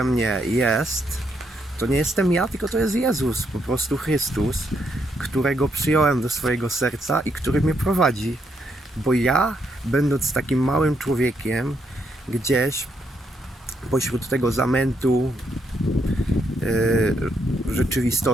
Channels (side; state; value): both; normal; correlation 0.77